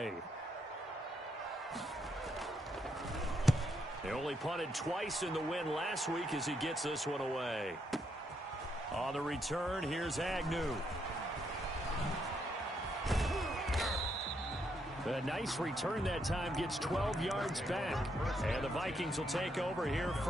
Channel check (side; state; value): both; normal; correlation 0.77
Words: They only punted twice in the win last week as he gets this one away. On the return, here's Agnew. A nice return that time, gets 12 yards back. And the Vikings will take over here,